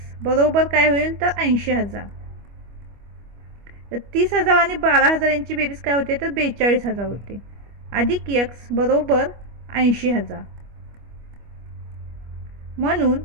बरोबर काय होईल तर 80,000. तर 30,000 आणि 12,000 यांची बेरीज काय होते तर 42,000 होते. अधिक x बरोबर 80,000. म्हणून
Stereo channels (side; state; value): left; late; 25 ms